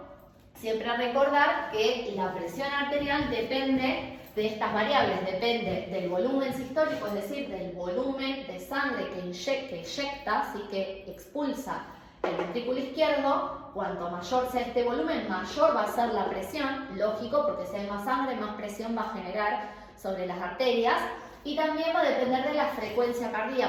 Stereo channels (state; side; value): identical; both; correlation 1.00